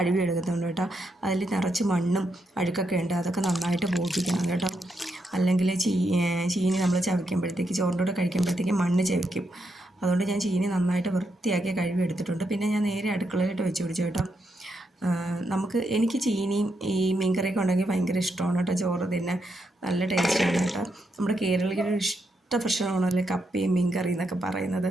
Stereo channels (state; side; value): normal; both; correlation 0.81